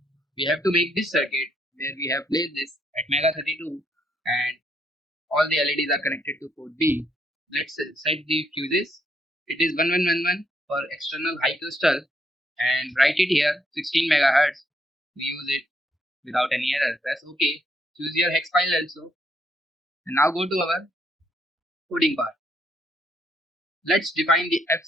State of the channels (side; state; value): both; normal; correlation 0.73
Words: We have to make this circuit where we have placed this Atmega32 and all the LEDs are connected to port B. Let's set the fuses. It is 1111 for external high crystal and write it here 16 megahertz. We use it without any error. Press OK. Choose your hex file also. And now go to our coding part. Let's define the